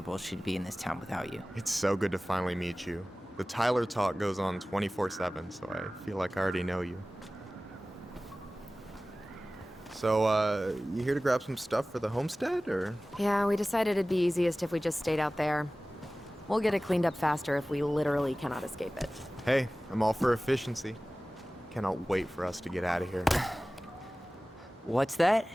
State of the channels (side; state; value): both; normal; correlation 0.97